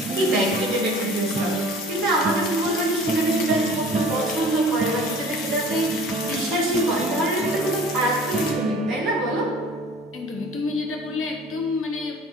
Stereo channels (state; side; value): normal; both; correlation 0.46